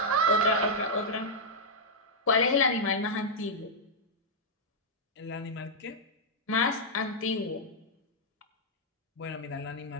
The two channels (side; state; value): both; normal; correlation -0.06